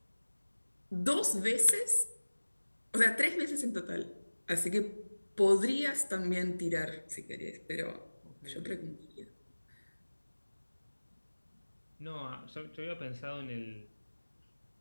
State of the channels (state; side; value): inverted; both; correlation -1.00